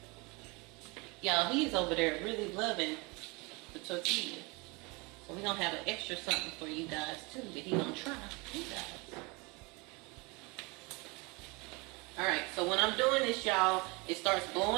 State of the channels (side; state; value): left; quieter; 27.4 dB